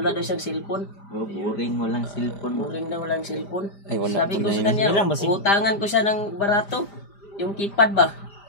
daw siyang cellphone. Oh, boring walang cellphone. Boring daw walang cellphone. Ay wala Sabi po ko na sa yun. kanya, Ilang ba si- utangan ko siya ng barato. Yung keypad ba?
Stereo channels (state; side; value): late; right; 5.0 ms